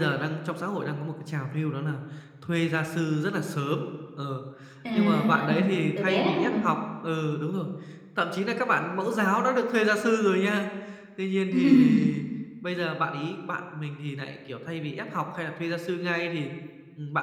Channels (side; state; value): both; identical; correlation 1.00